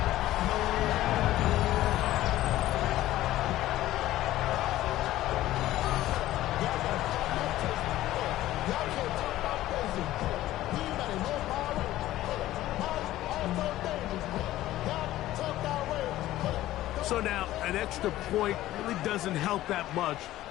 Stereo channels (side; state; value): right; quieter; 14.9 dB